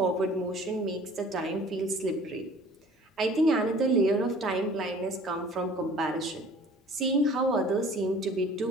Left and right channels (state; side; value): normal; both; correlation 0.49